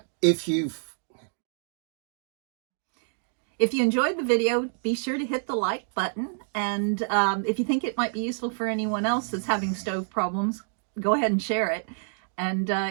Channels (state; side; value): silent; left; digital silence